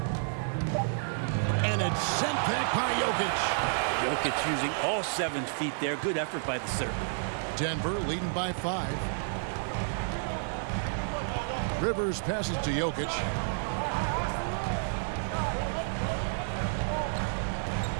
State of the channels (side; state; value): left; silent; digital silence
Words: And it's sent back by Jokic. Jokic using all 7 feet there. Good effort by the Serb. Denver leading by 5. Rivers passes to Jokic.